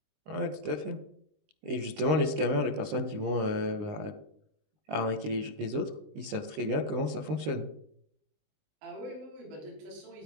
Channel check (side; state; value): left; late; 19 ms